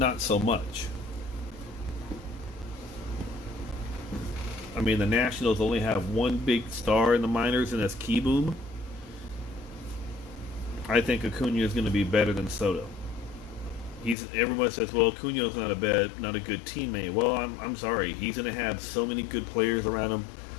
so much. I mean, the Nationals only have one big star in the minors, and that's Keyboom. I think Acuna is going to be better than Soto. Everyone says, well, Acuna's not a good teammate. Well, I'm sorry. He's going to have so many good players around him.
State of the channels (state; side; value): drops out; right; at 14.2 s